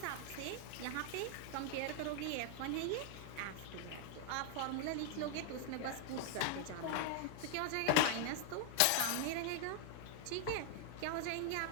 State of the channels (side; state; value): both; different; correlation 0.00